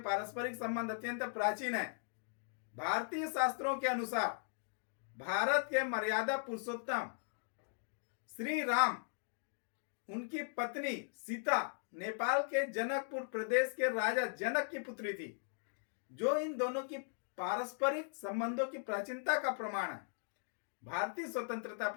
पारस्परिक संबंध अत्यंत प्राचीन है। भारतीय शास्त्रों के अनुसार भारत के मर्यादा पुरुषोत्तम श्री राम, उनकी पत्नी सीता नेपाल के जनकपुर प्रदेश के राजा जनक की पुत्री थी, जो इन दोनों की पारस्परिक संबंधों की प्राचीनता का प्रमाण है। भारतीय स्वतंत्रता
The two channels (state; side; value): silent; right; digital silence